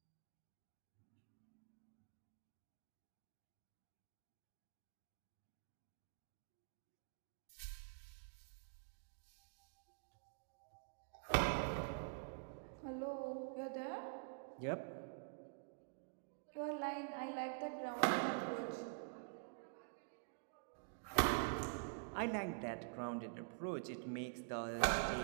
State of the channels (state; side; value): silent; left; digital silence